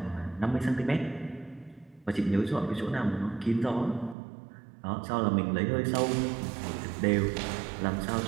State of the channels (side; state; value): left; drops out; at 4.2 s